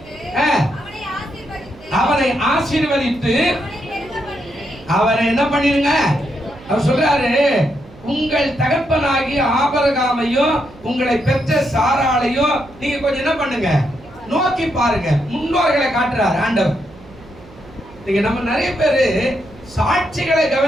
அவனை ஆசீர்வதித்து அவனை என்ன பண்ணிருங்க. அவர் சொல்றாரு, உங்கள் தகப்பனாகிய ஆபிரகாமையும் உங்களை பெற்ற சாராளையும் நீங்க கொஞ்சம் என்ன பண்ணுங்க, நோக்கி பாருங்க. முன்னோர்களை காட்டுறாரு ஆண்டவர். நீங்க நம்ம நிறைய பேரு சாட்சிகளை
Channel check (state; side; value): noise; right; hum, 22 dB below the sound